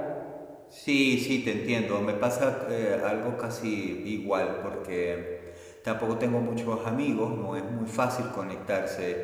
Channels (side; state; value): both; identical; correlation 1.00